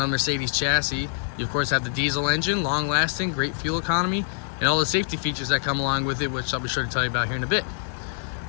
a Mercedes chassis, you of course have the diesel engine, long lasting, great fuel economy, and all the safety features that come along with it, which I'll be sure to tell you about here in a bit.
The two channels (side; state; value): right; silent; 58 dB below the other